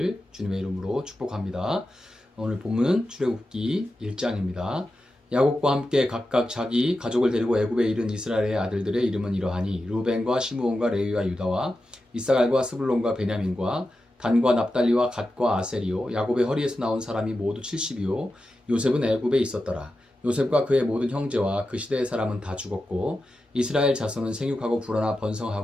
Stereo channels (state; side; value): normal; both; correlation 0.91